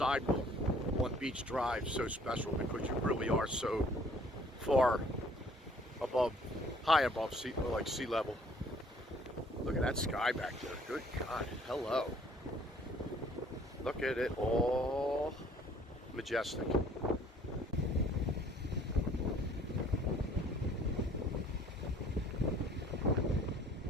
on Beach Drive so special, because you really are so far above, high above sea level. Look at that sky back there. Good God, hello. Look at it, all majestic.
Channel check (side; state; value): both; normal; correlation 0.57